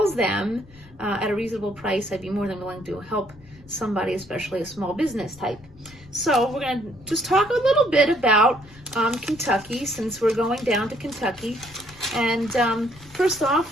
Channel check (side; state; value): left; noise; rumble, 24 dB below the sound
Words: them at a reasonable price, I'd be more than willing to help somebody, especially a small business type. So we're going to just talk a little bit about Kentucky, since we're going down to Kentucky. And first